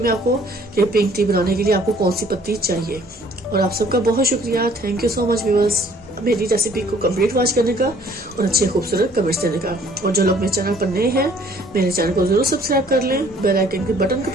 आपको कि पिंक टी बनाने के लिए आपको कौन सी पत्ती चाहिए। और आप सबका बहुत शुक्रिया, thank you so much viewers, मेरी रेसिपी को कंप्लीट वॉच करने का और अच्छे खूबसूरत कमेंट्स देने का। और जो लोग मेरे चैनल पर नए हैं, मेरे चैनल को जरूर सब्सक्राइब कर लें, बेल आइकन के बटन को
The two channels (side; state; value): both; normal; correlation 0.58